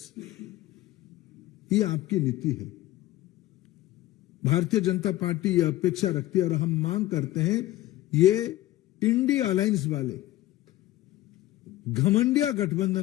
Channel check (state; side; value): quieter; right; 15.7 dB